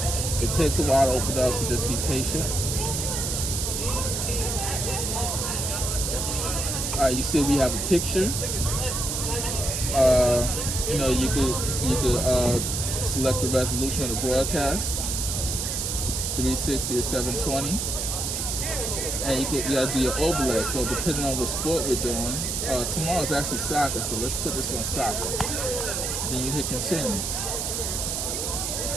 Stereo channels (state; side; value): noise; right; hiss, 2 dB below the sound